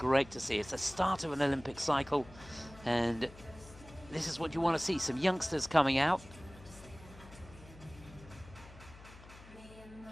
to see. It's the start of an Olympic cycle, and this is what you want to see, some youngsters coming out.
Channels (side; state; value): left; noise; hum, 19 dB below the sound